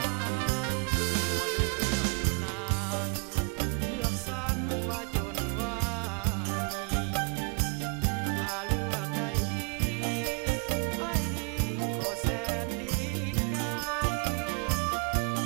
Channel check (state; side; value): quieter; left; 36.9 dB